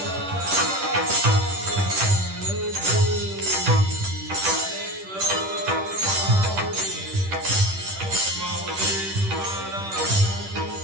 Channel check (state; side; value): late; left; 10 ms